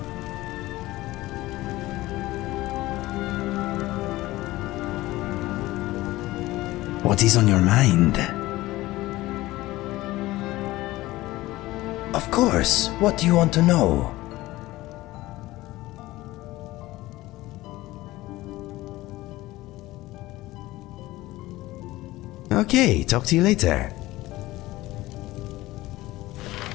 What is on your mind? Of course, what do you want to know? Okay, talk to you later.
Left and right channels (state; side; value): quieter; right; 17.9 dB